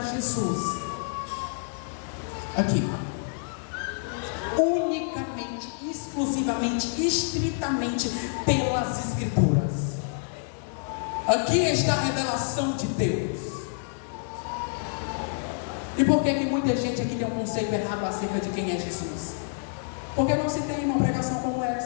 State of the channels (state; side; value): silent; right; 59 dB below the other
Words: Jesus aqui, unicamente, exclusivamente, estritamente pelas Escrituras. Aqui está a revelação de Deus. E por que muita gente aqui tem um conceito errado acerca de quem é Jesus? Porque não se tem uma pregação como